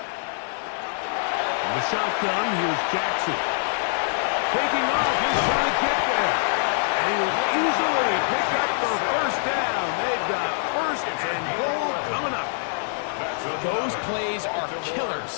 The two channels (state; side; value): silent; right; digital silence